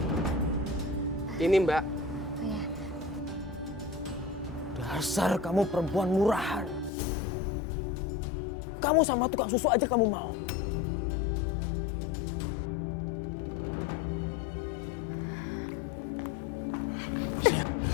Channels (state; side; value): drops out; right; at 6.9 s